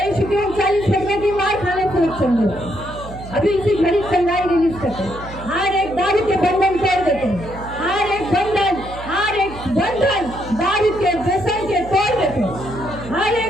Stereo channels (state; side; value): noise; right; hum, 13 dB below the sound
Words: के 39 लगने की मार खाने से रक्षण देते. अभी इसी घड़ी चंगाई रिलीज करते हैं. हर एक दारू के बंधन तोड़ देते हैं. हर एक बंधन, हर एक बंधन दारू के व्यसन के तोड़ देते हैं. हर